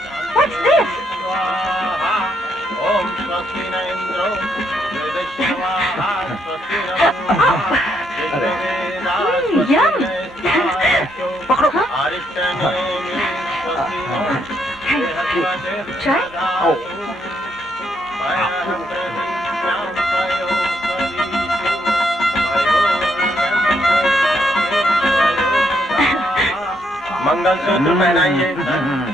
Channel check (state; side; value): normal; both; correlation 0.75